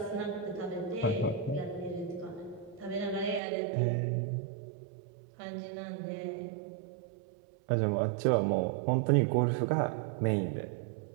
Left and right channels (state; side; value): drops out; left; at 3.4 s